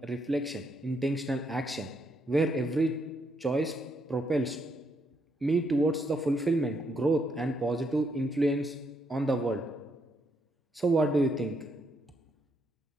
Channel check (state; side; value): normal; both; correlation 0.76